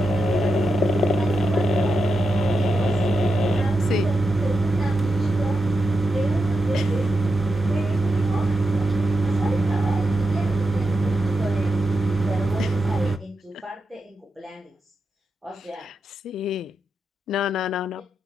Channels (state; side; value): normal; both; correlation 0.87